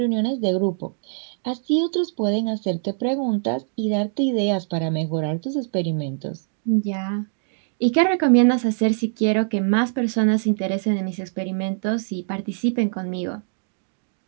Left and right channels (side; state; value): left; silent; digital silence